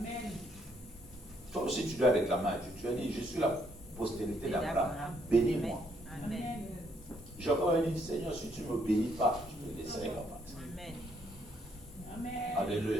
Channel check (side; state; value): both; normal; correlation 0.71